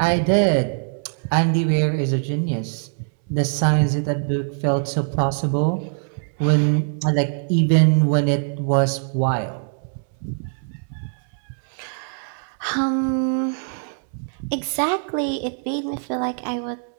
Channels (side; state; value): left; silent; 64 dB below the other